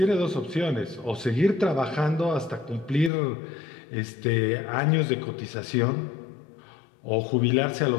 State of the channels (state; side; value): drops out; right; at 3.1 s